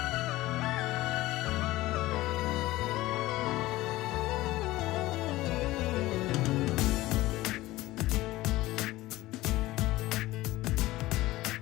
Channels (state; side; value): quieter; right; 17.7 dB